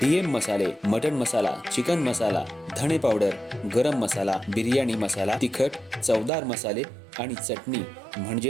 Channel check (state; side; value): drops out; left; at 6.3 s